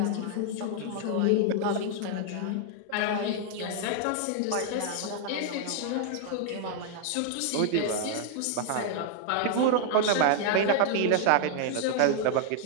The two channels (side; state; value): both; different; correlation 0.00